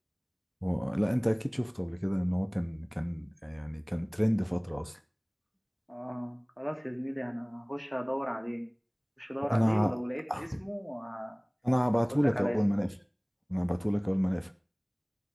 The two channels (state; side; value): identical; both; correlation 1.00